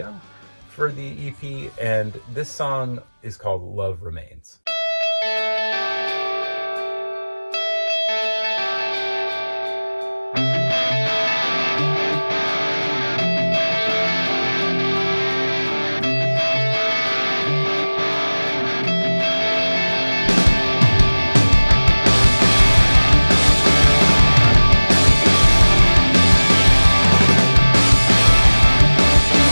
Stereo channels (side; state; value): both; inverted; correlation -1.00